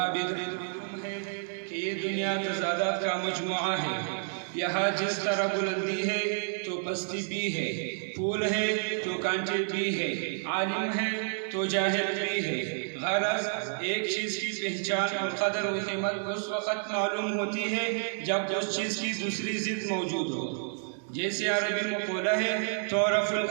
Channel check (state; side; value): silent; left; 58 dB below the other